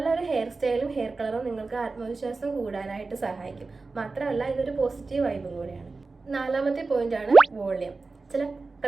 ഹെയർ സ്റ്റൈലും ഹെയർ കളറും നിങ്ങൾക്ക് ആത്മവിശ്വാസം കൂടാനായിട്ട് സഹായിക്കും. മാത്രമല്ല ഇതൊരു പോസിറ്റീവ് വൈബും കൂടിയാണ്. നാലാമത്തെ പോയിന്റാണ് വോളിയം. ചില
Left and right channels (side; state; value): left; quieter; 3.9 dB